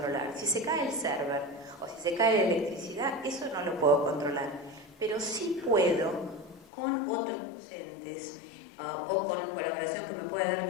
Si se cae el server o si se cae la electricidad, eso no lo puedo controlar, pero sí puedo con otros docentes o con colaboración que me pueda dar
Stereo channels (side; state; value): right; drops out; at 6.7 s